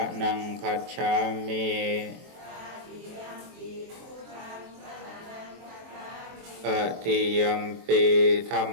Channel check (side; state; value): left; late; 23 ms